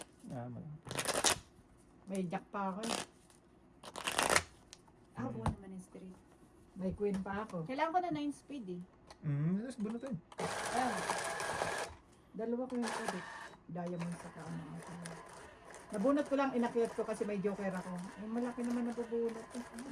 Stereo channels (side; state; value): both; identical; correlation 1.00